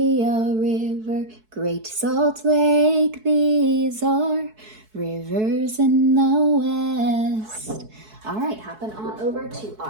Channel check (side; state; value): left; late; 4.6 ms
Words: River, Great Salt Lake, these are rivers in the West. All right, hopping on over to